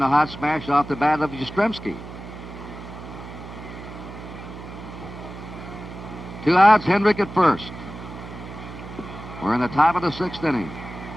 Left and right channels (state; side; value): noise; right; hum, 12 dB below the sound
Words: hot smash off the bat of Yastrzemski. 2 outs, Hendrick at first. We're in the top of the 6th inning.